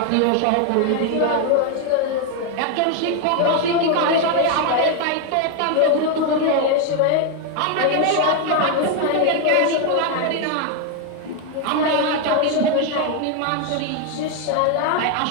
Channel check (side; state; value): both; different; correlation 0.01